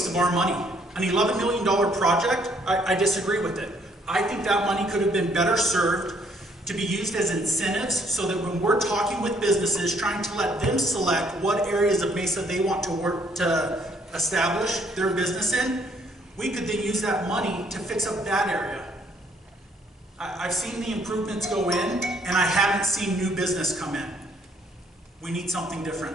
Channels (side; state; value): both; normal; correlation 0.66